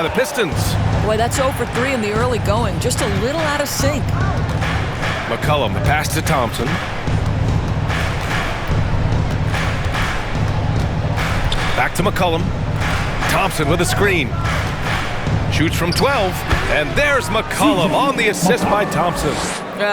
the Pistons. Boy, that's 0 for 3 in the early going. Just a little out of sync. McCollum, the pass to Thompson. Back to McCollum. Thompson with a screen. Shoots from 12. And there's McCollum on the assist by Thompson.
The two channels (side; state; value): both; identical; correlation 1.00